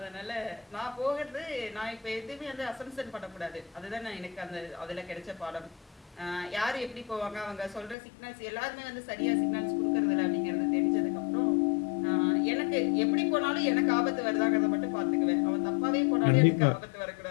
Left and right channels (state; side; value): drops out; right; at 8.0 s